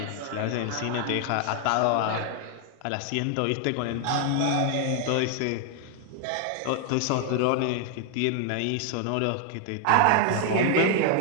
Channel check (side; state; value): both; different; correlation 0.00